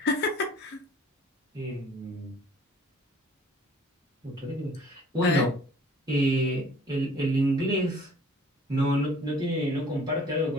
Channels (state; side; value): normal; both; correlation 0.53